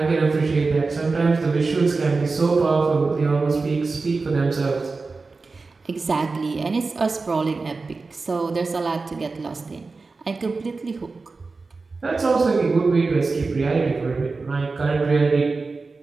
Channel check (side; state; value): left; quieter; 4.0 dB